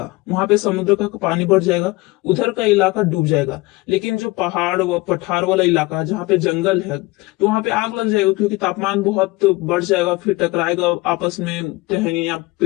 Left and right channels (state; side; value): quieter; right; 21.9 dB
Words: वहां पे समुद्र का पानी बढ़ जाएगा, उधर का इलाका डूब जाएगा। लेकिन जो पहाड़ व पठार वाला इलाका है जहाँ पे जंगल है, तो वहां पे आग लग जाएगा, क्योंकि तापमान बहुत बढ़ जाएगा, फिर टकराएगा आपस में, टहनिया,